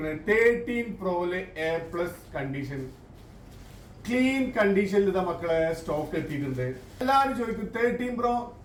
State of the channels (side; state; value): both; identical; correlation 1.00